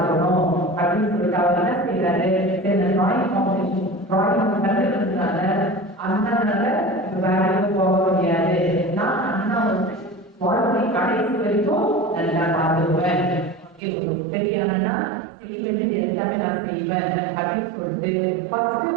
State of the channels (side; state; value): left; drops out; at 13.8 s